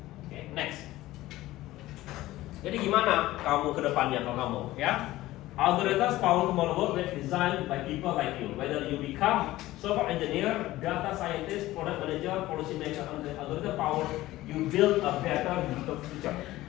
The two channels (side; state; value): right; quieter; 16.7 dB